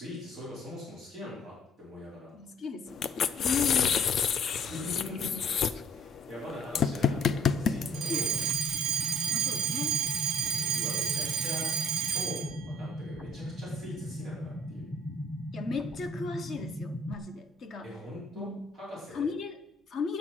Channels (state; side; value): normal; both; correlation 0.59